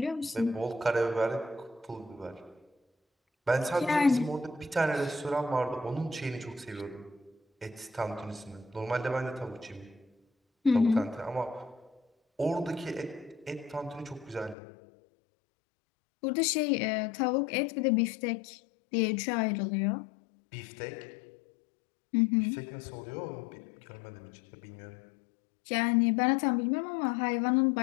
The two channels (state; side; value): drops out; right; at 14.6 s